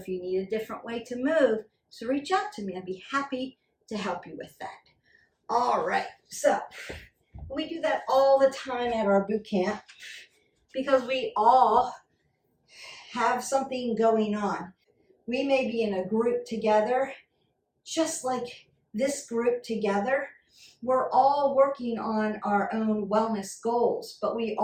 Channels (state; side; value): identical; both; correlation 1.00